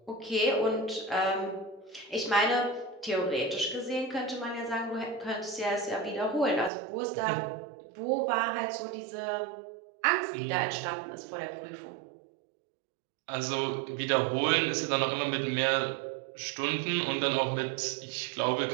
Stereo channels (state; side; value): drops out; left; at 6.7 s